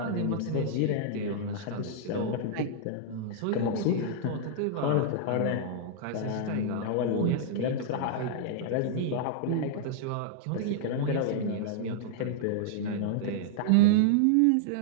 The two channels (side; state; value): both; different; correlation -0.01